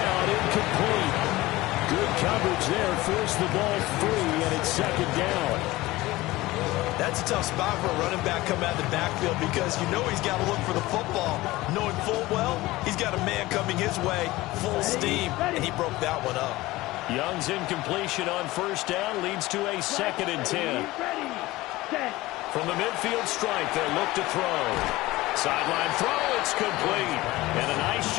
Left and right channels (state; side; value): quieter; right; 18.9 dB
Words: incomplete. Good coverage there. Forced the ball free, and it's second down. That's a tough spot for a running back coming out of the backfield because you know he's got to look for the football, knowing full well he's got a man coming his way, full steam, and he broke that one up. Young's incompletion on first down leads to a 2nd and 10. From the midfield stripe, they'll look to throw. Sideline throw, it's complete. And a nice